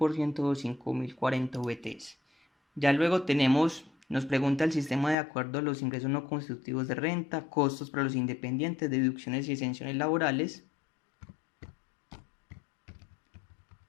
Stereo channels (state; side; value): drops out; right; at 5.2 s